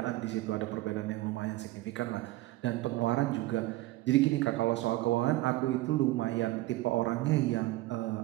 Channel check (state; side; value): quieter; left; 17.8 dB